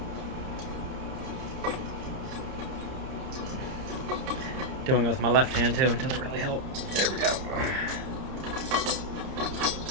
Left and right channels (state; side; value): late; left; 30 ms